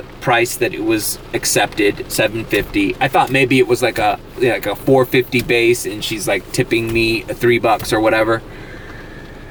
price that it was accepted, $7.50. I thought maybe it was like a $4.50 base and she's like tipping me $3 or whatever.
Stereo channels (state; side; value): identical; both; correlation 1.00